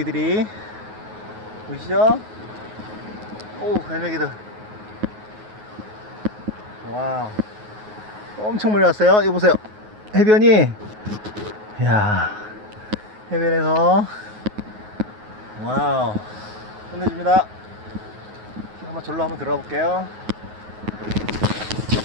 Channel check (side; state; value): left; late; 9.4 ms